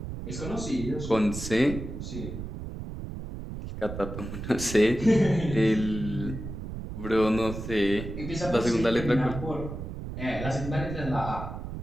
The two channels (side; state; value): right; noise; rumble, 8 dB below the sound